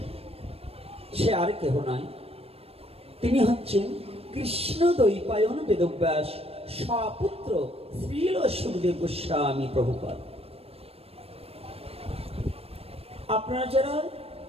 সে আর কেহ নয়, তিনি হচ্ছেন কৃষ্ণ দ্বৈপায়ন বেদব্যাস স্বপুত্র শ্রীল সুখদেব গোস্বামী প্রভুপাদ। আপনারা যারা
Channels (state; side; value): late; left; 0.28 ms